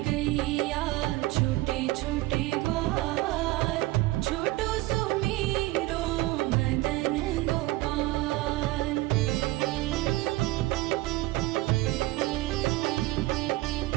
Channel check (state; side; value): quieter; left; 18.9 dB